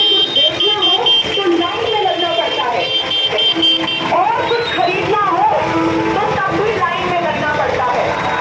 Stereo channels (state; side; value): identical; both; correlation 1.00